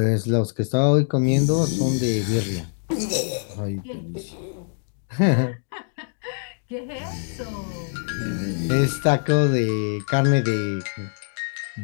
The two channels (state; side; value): silent; right; digital silence